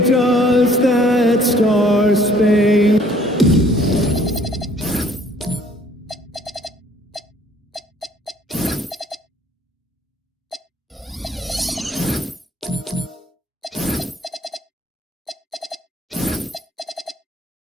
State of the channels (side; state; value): both; normal; correlation 0.59